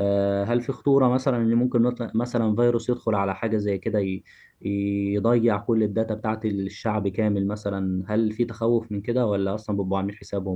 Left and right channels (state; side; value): identical; both; correlation 1.00